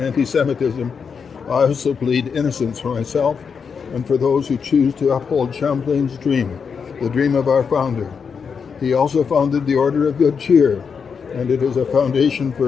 anti-Semitism, I also plead innocence for myself and for those who choose to uphold Champlain's dream, the dream of our founder. He also founded the Order of Good Cheer, and it is a foundation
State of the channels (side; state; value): right; quieter; 6.1 dB